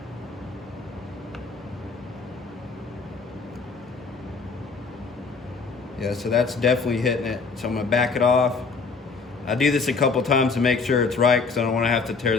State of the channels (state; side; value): quieter; right; 4.6 dB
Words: Yeah, so that's definitely hitting it. So I'm gonna back it off. I do this a couple times to make sure it's right, because I don't want to have to tear